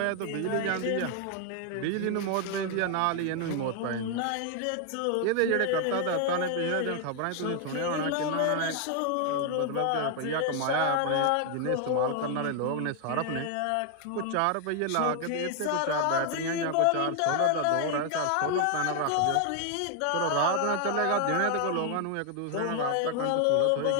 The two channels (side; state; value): both; different; correlation 0.00